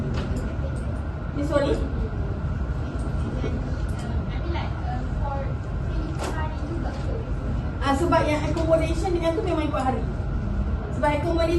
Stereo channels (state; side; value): identical; both; correlation 1.00